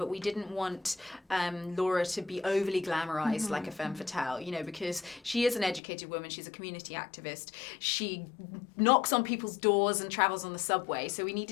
we didn't want Laura to be overly glamorized like a femme fatale, you know, because she is an educated woman. She's a community activist. She knocks on people's doors and travels on the subway. So we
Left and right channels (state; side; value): drops out; right; at 5.8 s